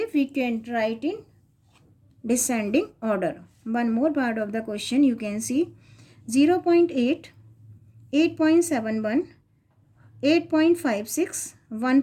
we can write in descending order. One more part of the question you can see 0.8, 8.71, 8.56,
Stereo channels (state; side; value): identical; both; correlation 1.00